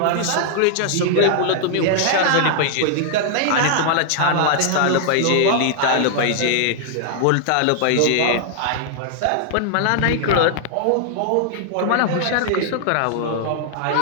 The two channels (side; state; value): both; different; correlation 0.00